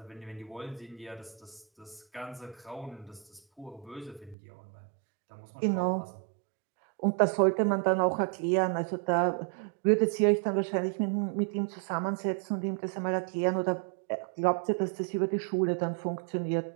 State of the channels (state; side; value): drops out; left; at 4.4 s